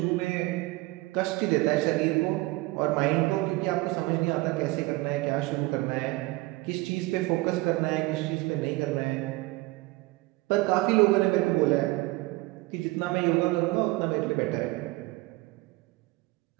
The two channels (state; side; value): quieter; left; 21.9 dB